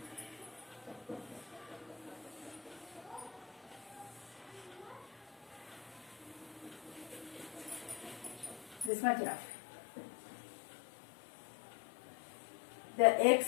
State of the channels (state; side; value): drops out; right; at 8.9 s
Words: This much enough. The